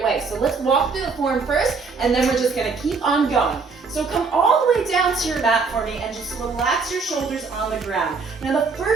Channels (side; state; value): left; quieter; 4.7 dB